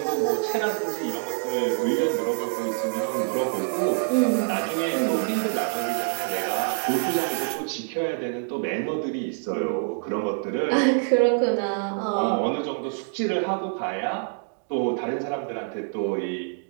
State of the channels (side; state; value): left; silent; 61 dB below the other